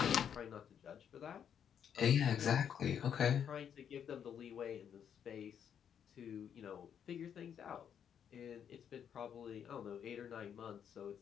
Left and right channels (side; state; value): right; quieter; 8.4 dB